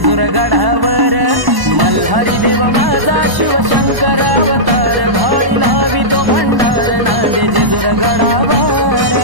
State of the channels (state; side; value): late; left; 1.0 ms